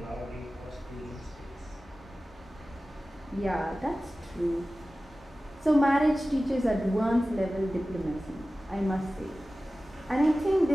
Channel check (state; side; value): normal; both; correlation 0.96